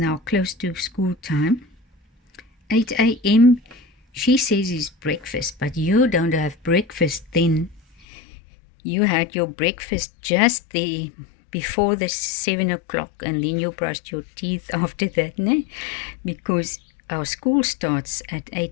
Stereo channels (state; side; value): drops out; right; at 8.1 s